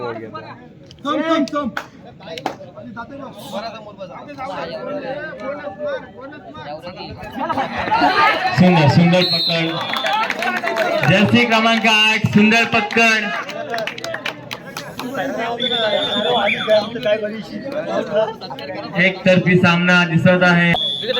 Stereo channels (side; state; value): both; identical; correlation 1.00